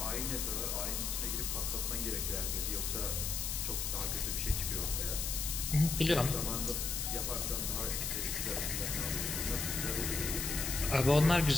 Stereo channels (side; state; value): left; noise; hiss, 1 dB below the sound